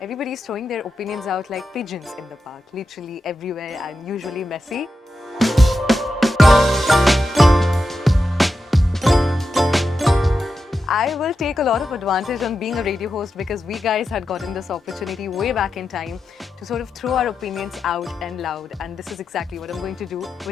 throwing their opinions out like pigeons in the park, literally everywhere and usually messy. I will take a lot of advantage on being a radio host because we guys had gotten this opportunity way back in time to sort of throw our opinions out and loud, and this is exactly what I'm going to do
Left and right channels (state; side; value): normal; both; correlation 0.89